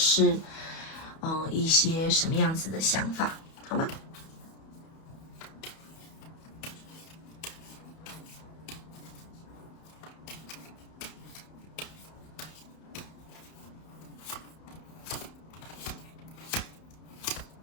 一些什么样子的想法，好吗？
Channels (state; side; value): late; right; 31 ms